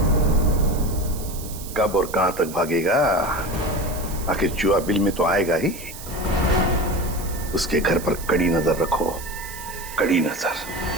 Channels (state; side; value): noise; right; hiss, 13 dB below the sound